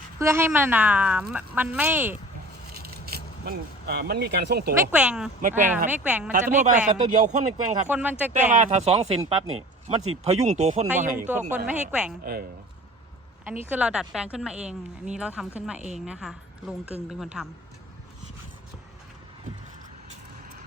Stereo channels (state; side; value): normal; both; correlation 0.43